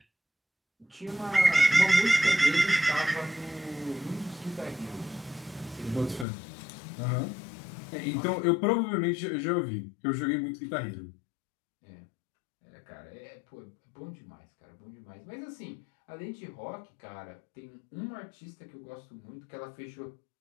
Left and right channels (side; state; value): right; drops out; at 6.2 s